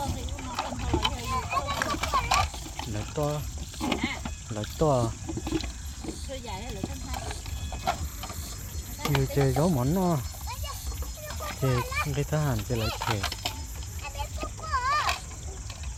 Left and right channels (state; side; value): identical; both; correlation 1.00